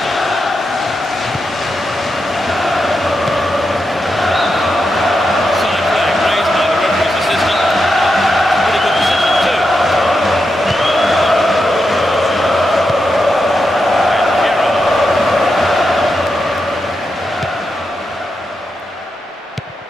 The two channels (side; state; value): both; normal; correlation 0.86